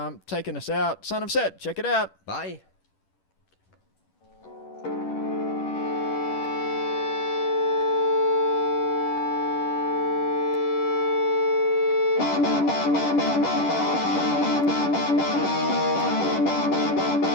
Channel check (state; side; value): late; right; 11 ms